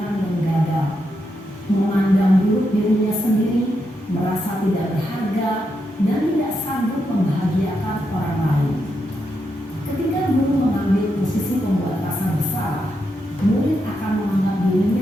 yang gagal, memandang buruk dirinya sendiri, merasa tidak berharga, dan tidak sanggup membahagiakan orang lain. Ketika guru mengambil posisi pembuat rasa bersalah, murid akan menganggap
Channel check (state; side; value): normal; both; correlation 0.83